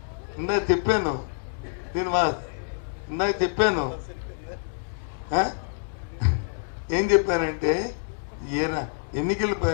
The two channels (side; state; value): right; silent; digital silence